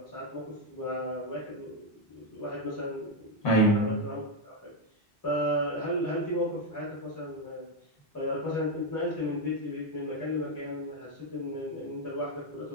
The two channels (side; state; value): both; normal; correlation 0.04